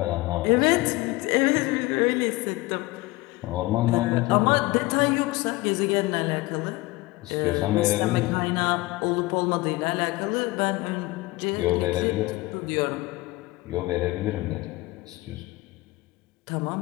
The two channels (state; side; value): quieter; right; 20.8 dB